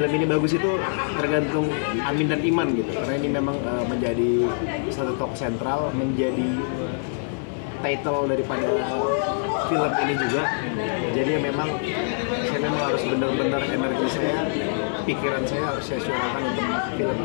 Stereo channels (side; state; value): right; silent; 62 dB below the other